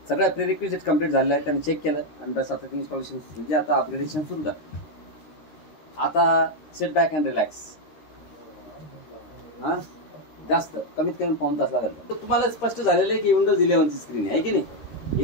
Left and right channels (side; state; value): right; late; 13 ms